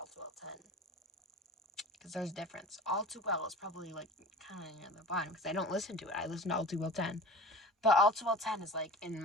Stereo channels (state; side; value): normal; both; correlation 0.37